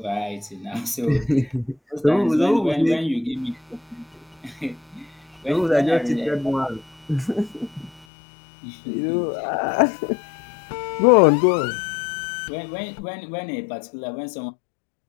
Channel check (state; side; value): drops out; right; at 8.1 s